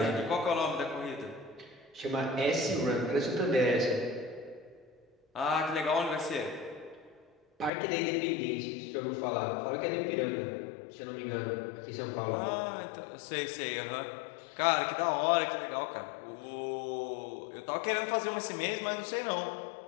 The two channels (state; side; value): drops out; right; at 7.7 s